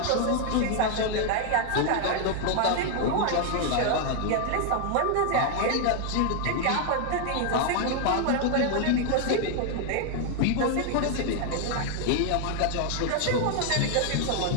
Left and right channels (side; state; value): both; different; correlation 0.00